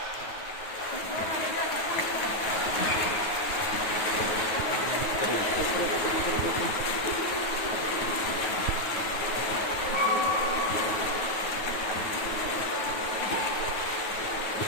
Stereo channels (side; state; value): right; late; 9.2 ms